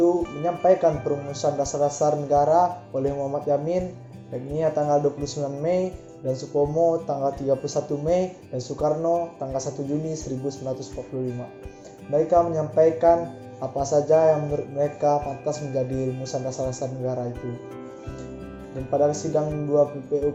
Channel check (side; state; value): both; identical; correlation 1.00